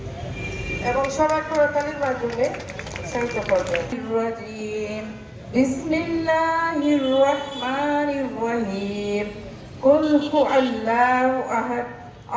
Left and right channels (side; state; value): both; identical; correlation 1.00